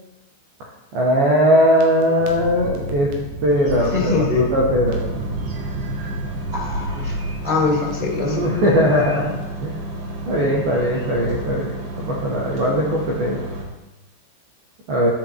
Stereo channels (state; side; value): late; left; 14 ms